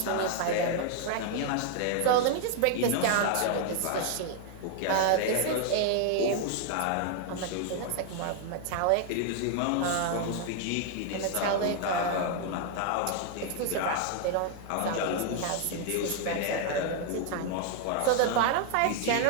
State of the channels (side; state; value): both; different; correlation 0.00